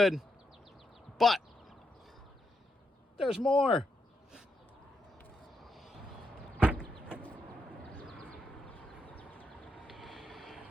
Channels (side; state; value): both; normal; correlation 0.82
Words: But there's more.